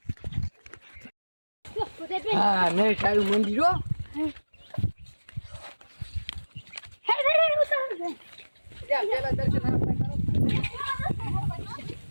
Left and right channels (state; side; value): inverted; both; correlation -1.00